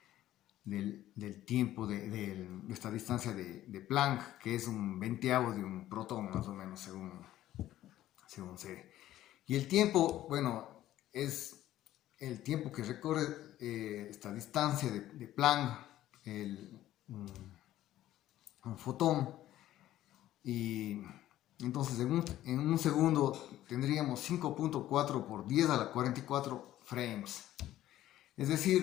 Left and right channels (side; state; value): right; quieter; 13.7 dB